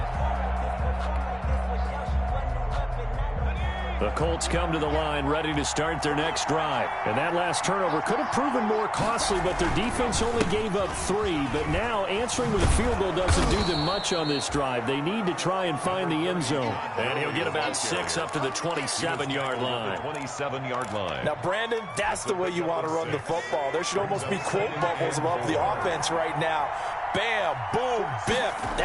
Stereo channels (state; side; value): identical; both; correlation 1.00